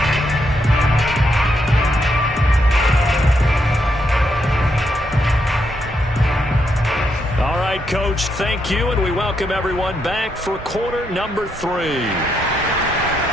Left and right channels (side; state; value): both; normal; correlation 0.79